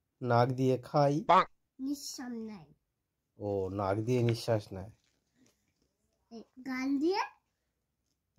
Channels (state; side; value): identical; both; correlation 1.00